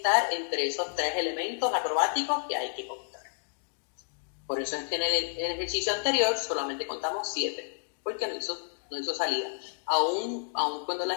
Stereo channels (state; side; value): silent; right; digital silence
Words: entre esos 3 elementos acrobáticos que hay que contar. Por eso es que en el ejercicio anterior solamente contamos 7, porque no hizo salida. Aún cuando la